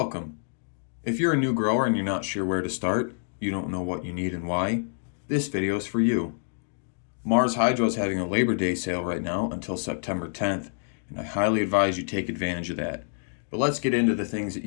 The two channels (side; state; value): right; silent; digital silence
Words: If you're a new grower and you're not sure where to start, you don't know what you need and why, this video is for you. Mars Hydro is having a Labor Day sale right now until September 10th, and I highly advise you take advantage of that. But let's get into the things that